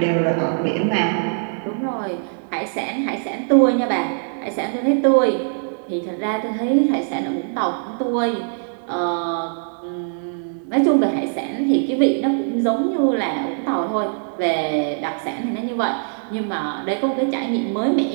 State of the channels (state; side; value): silent; left; digital silence